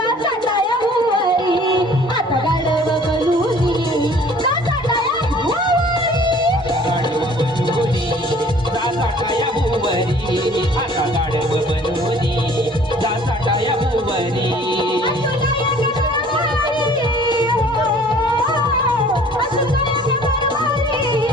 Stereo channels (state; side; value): normal; both; correlation 0.52